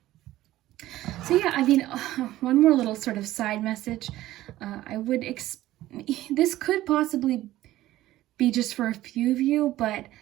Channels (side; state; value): left; quieter; 15.2 dB